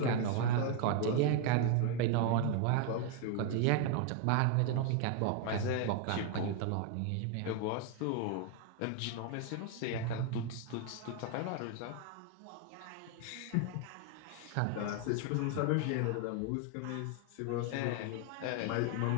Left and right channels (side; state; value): both; different; correlation 0.00